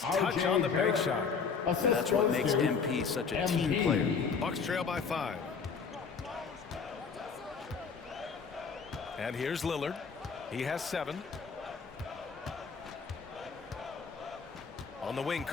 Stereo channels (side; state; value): right; quieter; 5.6 dB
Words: touch on the bank shot. That's what makes MP such a team player. Bucks trail by 5. And here's Lillard. He has 7. On the wing,